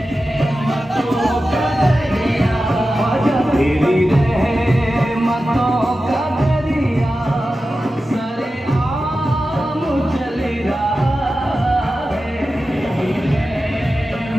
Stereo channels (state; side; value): normal; both; correlation 0.93